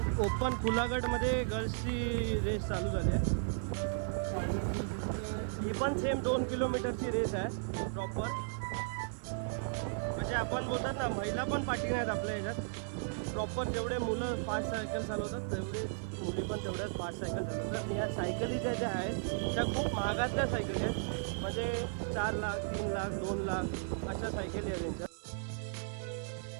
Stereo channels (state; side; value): silent; left; digital silence